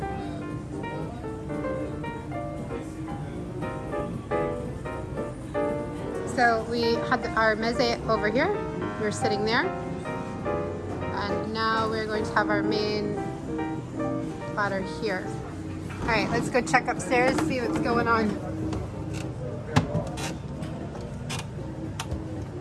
So we had our meze over here. We're sitting there. And now we're going to have our main platter here. All right, let's go check upstairs, see what's going on.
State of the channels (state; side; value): identical; both; correlation 1.00